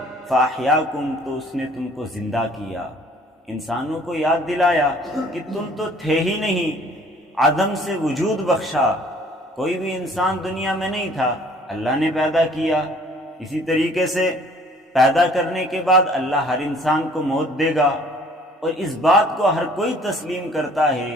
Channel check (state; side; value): normal; both; correlation 0.55